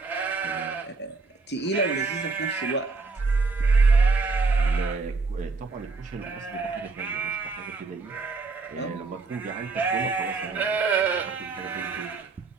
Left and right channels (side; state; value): left; quieter; 4.1 dB